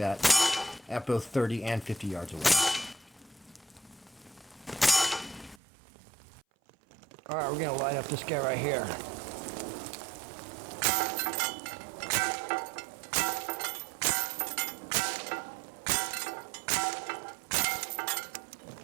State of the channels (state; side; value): drops out; left; at 5.6 s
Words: at both 30 and 50 yards away. All right, we're going to light up this guy right here.